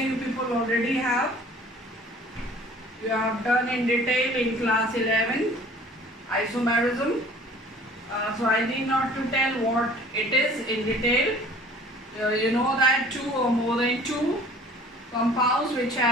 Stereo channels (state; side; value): normal; both; correlation 0.50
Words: you people already have. You have done in detail in class 11 isomerism. So I need not to tell what it is in detail. You know that two or more than two compounds which